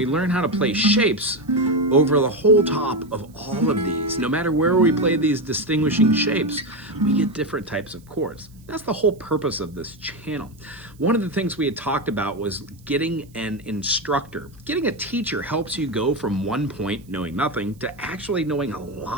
learn how to play shapes over the whole top of all of these. No matter where we play these distinguishing shapes, we get different types of chords. That's the whole purpose of this channel. One of the things we had talked about was getting an instructor. Getting a teacher helps you go from one point, knowing nothing, to actually knowing a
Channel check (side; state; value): right; noise; hiss, 30 dB below the sound